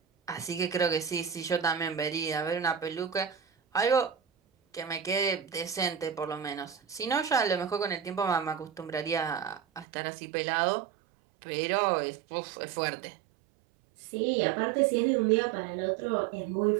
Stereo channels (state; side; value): drops out; left; at 9.9 s